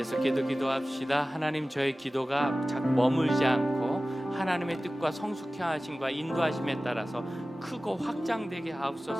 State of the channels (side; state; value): both; normal; correlation 0.96